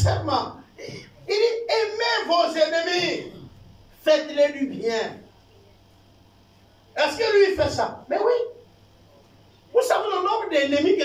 il dit aimez vos ennemis, faites-les du bien. Est-ce que lui fait ça? Mais oui. Vous savez le nombre d'ennemis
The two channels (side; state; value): both; identical; correlation 1.00